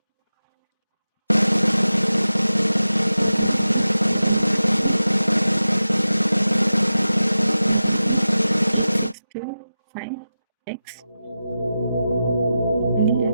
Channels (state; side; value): inverted; both; correlation -0.93